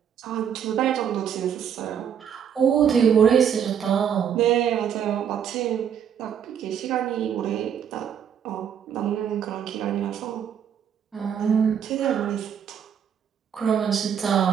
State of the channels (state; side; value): quieter; left; 8.3 dB